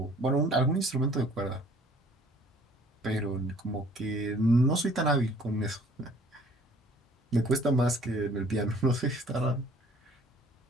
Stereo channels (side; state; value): both; normal; correlation 0.55